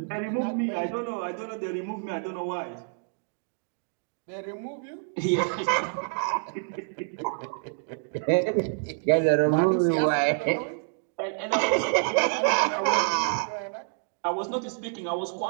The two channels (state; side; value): silent; left; digital silence